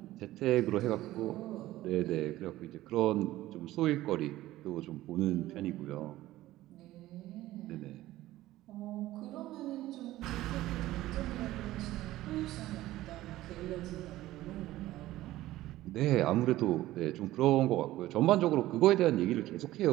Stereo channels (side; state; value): left; quieter; 15.8 dB